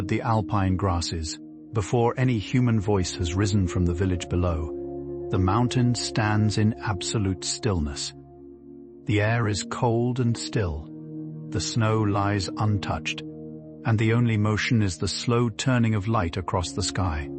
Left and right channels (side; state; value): both; identical; correlation 1.00